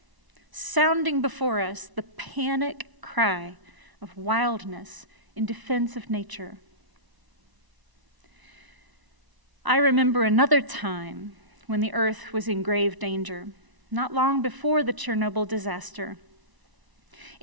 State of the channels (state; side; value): late; left; 1.0 ms